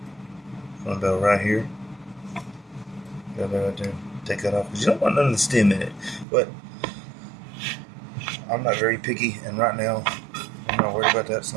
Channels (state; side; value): drops out; left; at 6.2 s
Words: from about right here. Got that right there. Take that off because you don't want none of the stem in it. But I'm not very picky, and right now I'm not worried about that. So